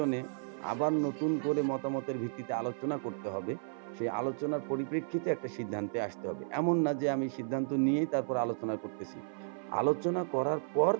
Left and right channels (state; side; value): silent; left; 55 dB below the other